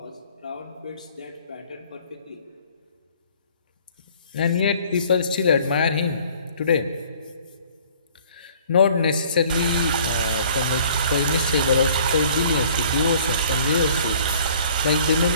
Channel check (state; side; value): inverted; both; correlation -0.54